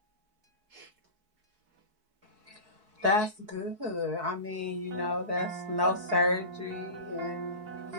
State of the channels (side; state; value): left; late; 4.6 ms